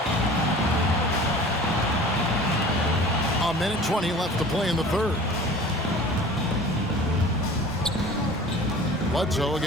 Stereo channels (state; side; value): normal; both; correlation 0.43